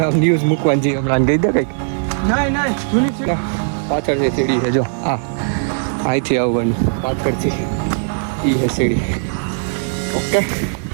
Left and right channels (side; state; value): left; silent; digital silence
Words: ન્યૂઝ મૂકવાની છીએ હમણાં કહી દે કંઈક નહીં જૂની સીડી પાછળ છે સીડી છે જો હા અહીંથી આવવાનું પાછળથી એ છે સીડી ઓકે